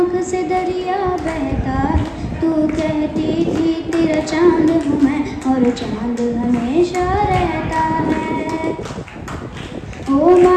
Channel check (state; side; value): identical; both; correlation 1.00